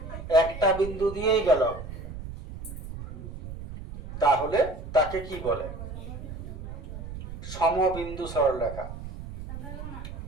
একটা বিন্দু দিয়েই গেল, তাহলে তাকে কি বলে? সমবিন্দু সরলরেখা।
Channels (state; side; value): noise; right; rumble, 10 dB below the sound